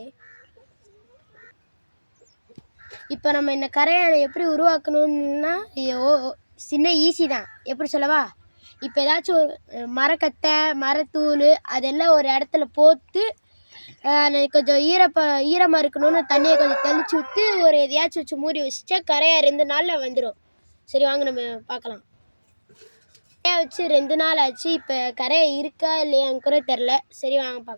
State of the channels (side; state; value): both; inverted; correlation -1.00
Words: இப்போ நம்ம இந்த கரையை எப்படி உருவாக்கணும்னா சின்ன ஈஸி தான். எப்படி சொல்லவா? இப்போ ஏதாச்சும் ஒரு மரக்கட்டை மரத்தூள் அதெல்லாம் ஒரு இடத்துல போட்டு கொஞ்சம் ஈரமாக இருக்கணும்னு தண்ணியை கொஞ்சம் தெளிச்சு விட்டு ஒரு எதையாச்சும் வச்சு மூடி வச்சுட்டா கரையாக 2 நாளில் வந்துடும். சரி வாங்க நம்ம பார்க்கலாம். கரையை வச்சு 2 நாள் ஆச்சு. இப்போ கரையை இருக்கா இல்லையான்னு கூட தெரில. சரி வாங்க